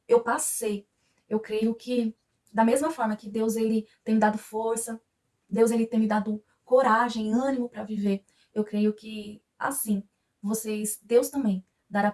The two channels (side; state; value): both; identical; correlation 1.00